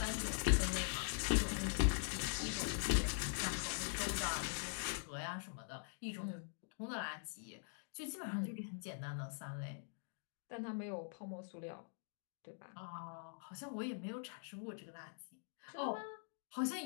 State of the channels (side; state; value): right; silent; digital silence